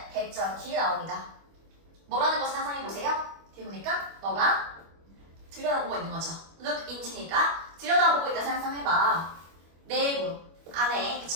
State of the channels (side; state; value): left; late; 25 ms